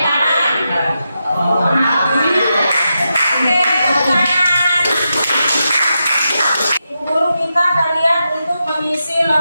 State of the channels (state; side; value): inverted; both; correlation -0.87